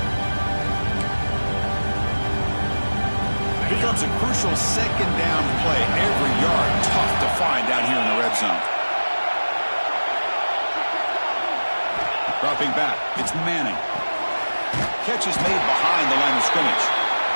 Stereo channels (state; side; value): inverted; both; correlation -1.00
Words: Here comes a crucial 2nd down play. Every yard tough to find down here in the red zone. Dropping back, it's Manning. Catch is made behind the line of scrimmage.